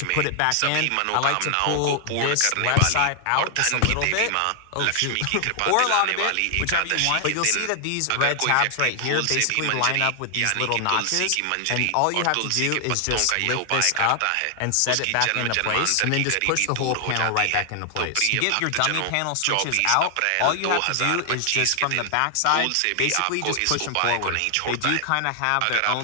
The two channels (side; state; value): both; different; correlation 0.00